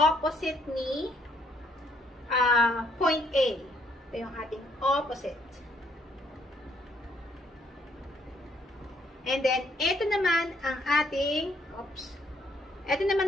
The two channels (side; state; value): both; normal; correlation 0.68